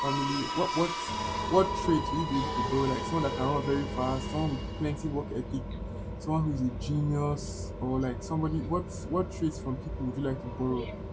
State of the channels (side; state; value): both; identical; correlation 1.00